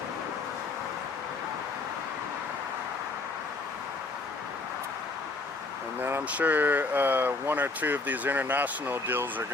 And then I'm sure 1 or 2 of these international deals are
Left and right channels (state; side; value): quieter; right; 3.5 dB